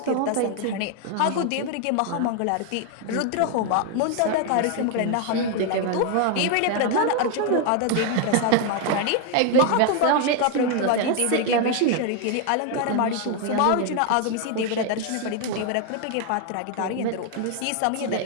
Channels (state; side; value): different; both; correlation 0.01